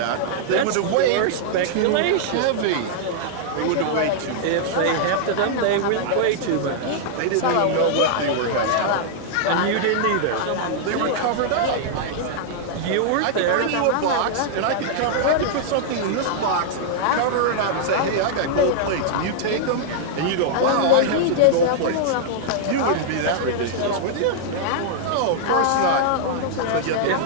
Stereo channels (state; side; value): different; both; correlation -0.01